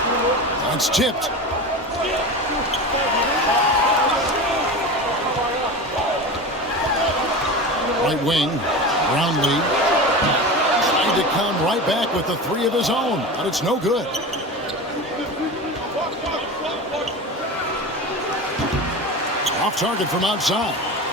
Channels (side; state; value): both; normal; correlation 0.28